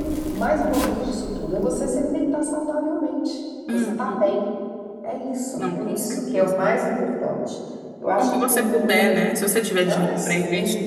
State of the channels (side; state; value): both; identical; correlation 1.00